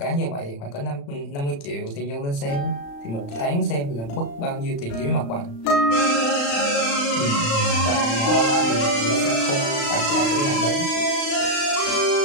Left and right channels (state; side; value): late; right; 35 ms